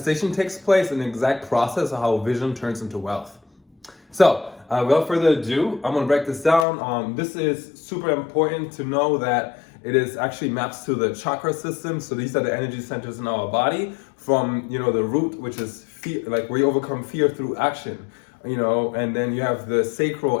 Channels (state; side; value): drops out; right; at 6.7 s